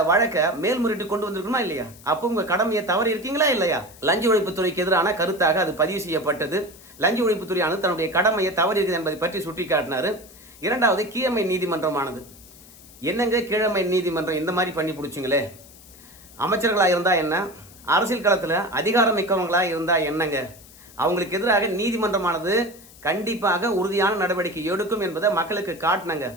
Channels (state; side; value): noise; left; hiss, 22 dB below the sound